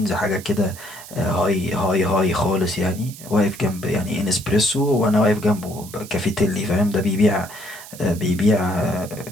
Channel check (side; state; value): right; noise; hiss, 16 dB below the sound